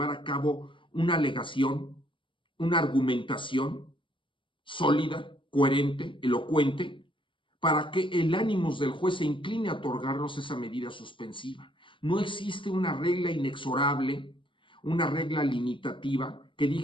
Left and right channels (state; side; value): late; right; 0.24 ms